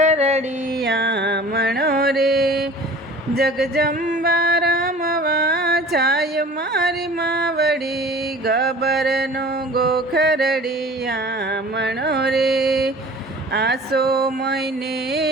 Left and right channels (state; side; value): normal; both; correlation 0.44